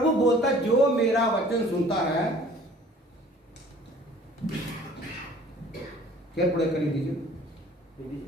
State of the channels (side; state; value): both; normal; correlation 0.51